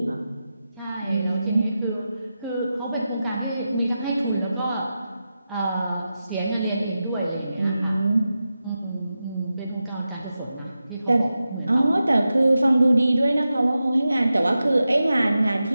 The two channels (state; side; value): inverted; both; correlation -0.91